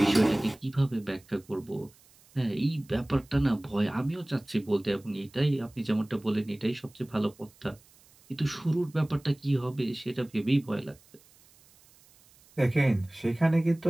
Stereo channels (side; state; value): right; noise; hiss, 28 dB below the sound